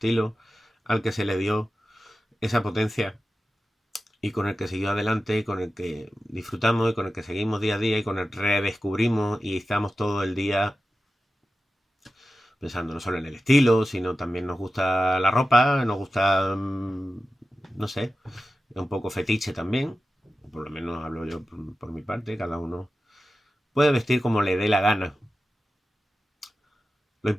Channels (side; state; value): both; normal; correlation 0.93